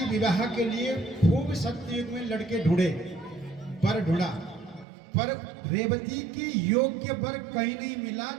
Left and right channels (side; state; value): left; drops out; at 4.9 s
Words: विवाह के लिए खूब सत्ययुग में लड़के ढूंढे, वर ढूंढा, पर रेवती के योग्य वर कहीं नहीं मिला।